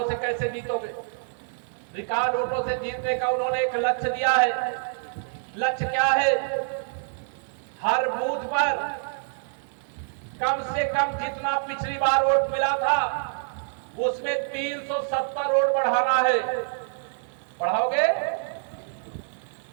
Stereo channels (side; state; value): left; silent; 61 dB below the other